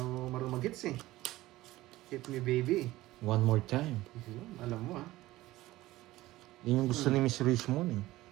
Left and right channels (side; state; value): left; quieter; 17.2 dB